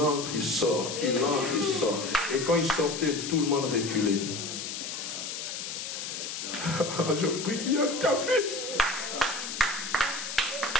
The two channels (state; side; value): noise; left; hiss, 6 dB below the sound